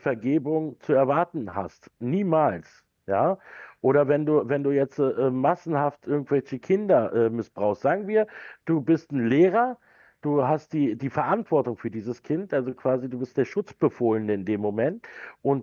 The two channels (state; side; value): identical; both; correlation 1.00